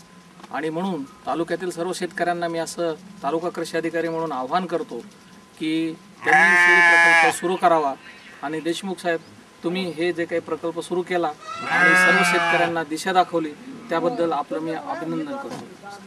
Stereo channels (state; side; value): identical; both; correlation 1.00